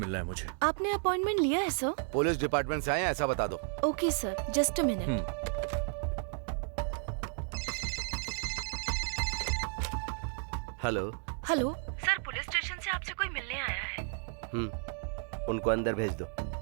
है मुझे। आपने अपॉइंटमेंट लिया है सर? पुलिस डिपार्टमेंट से आए हैं, ऐसा बता दो। Okay sir, just a minute. Hello. Hello sir, police station से आपसे कोई मिलने आया है। उनको अंदर भेज दो।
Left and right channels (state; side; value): silent; left; 56 dB below the other